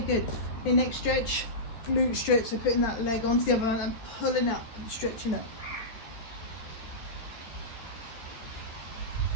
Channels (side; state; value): right; late; 13 ms